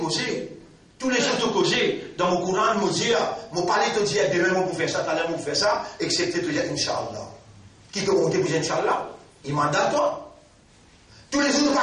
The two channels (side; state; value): both; identical; correlation 1.00